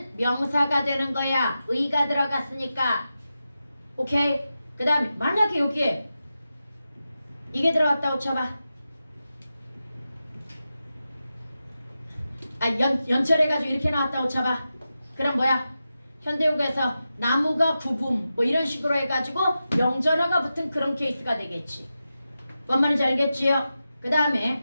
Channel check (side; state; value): both; inverted; correlation -0.91